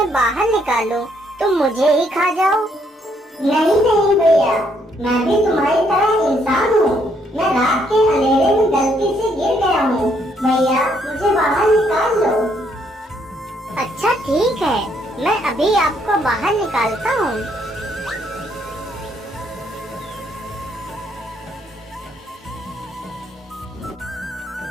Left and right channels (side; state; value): both; normal; correlation 0.71